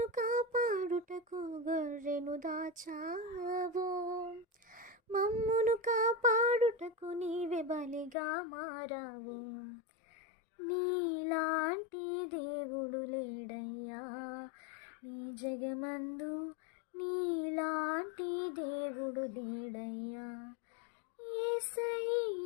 కాపాడుటకు గొర్రెను దాచావు, మమ్మును కాపాడుటకు నీవే బలిగా మారావు. నీలాంటి దేవుడు లేడయ్యా ఈ జగమందు, నీలాంటి దేవుడు లేడయ్యా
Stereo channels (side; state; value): right; drops out; at 8.2 s